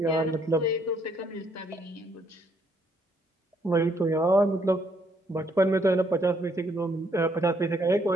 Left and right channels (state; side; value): normal; both; correlation 0.70